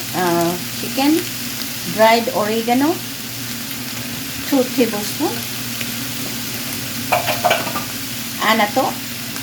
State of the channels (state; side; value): identical; both; correlation 1.00